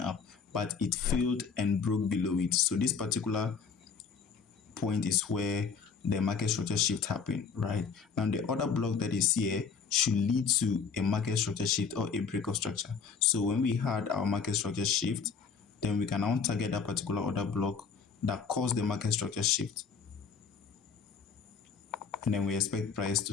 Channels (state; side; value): quieter; right; 5.9 dB